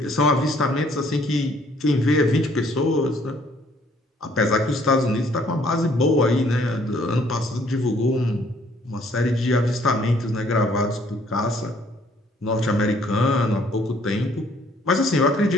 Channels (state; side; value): normal; both; correlation 0.63